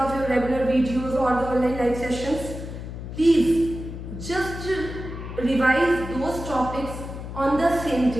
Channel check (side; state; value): left; noise; hum, 9 dB below the sound